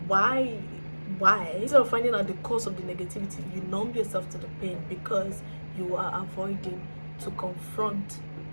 why, instead of finding out the cause of the negativity, you numb yourself to the pain because you are avoiding to confront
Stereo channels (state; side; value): inverted; both; correlation -1.00